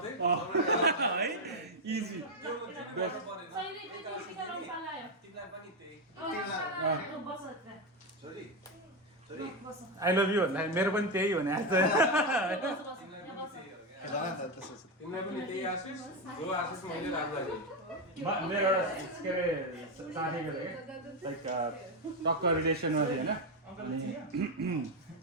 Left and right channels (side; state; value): both; normal; correlation 0.08